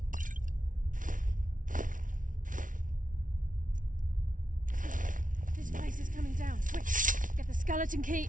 This place is coming down. Quick! Get the skeleton key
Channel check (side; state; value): left; late; 0.38 ms